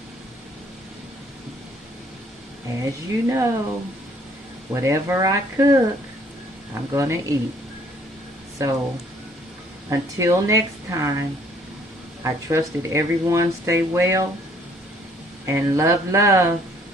whatever I cook, I'm gonna eat. So until next time, I trust that everyone stay well and love.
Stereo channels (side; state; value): both; normal; correlation 0.61